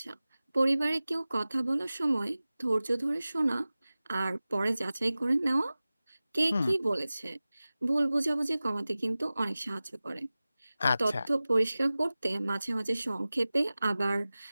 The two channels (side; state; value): both; inverted; correlation -0.97